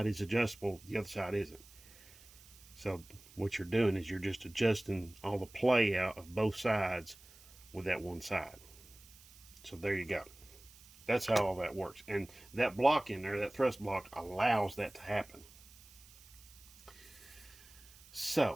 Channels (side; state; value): right; noise; hiss, 22 dB below the sound